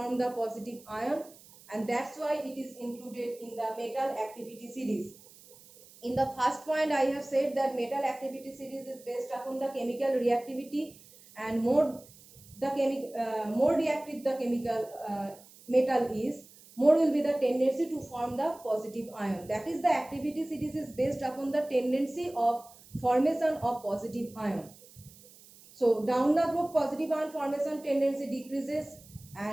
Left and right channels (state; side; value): noise; right; hiss, 23 dB below the sound